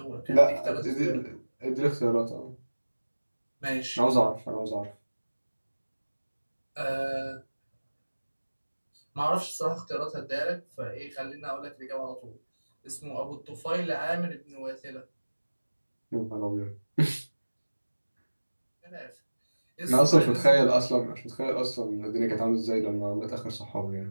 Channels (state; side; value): inverted; both; correlation -1.00